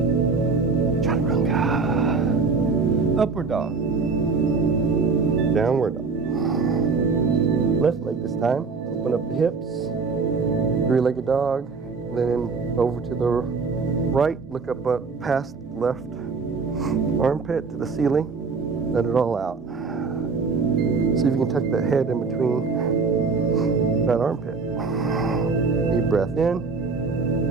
Upward dog. Downward dog. Left leg this time. Open up the hips. Three-legged dog. Then over to the right. Look up past left armpit to the ceiling. Let it all out. See if you can tuck that head in between that armpit. Deep breath in.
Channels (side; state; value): left; quieter; 4.7 dB